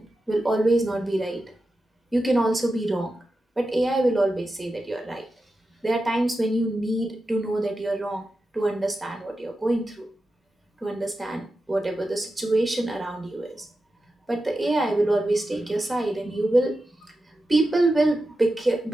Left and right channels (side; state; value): both; normal; correlation 0.91